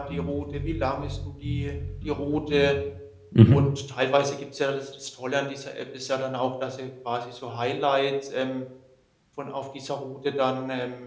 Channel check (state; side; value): identical; both; correlation 1.00